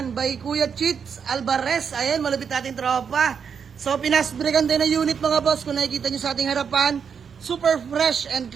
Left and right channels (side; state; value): left; quieter; 6.8 dB